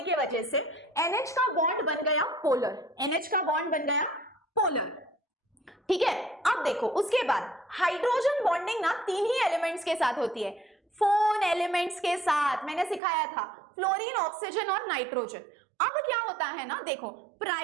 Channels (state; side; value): drops out; left; at 13.0 s